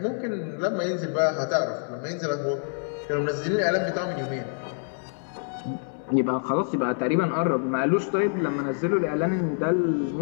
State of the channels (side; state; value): right; silent; digital silence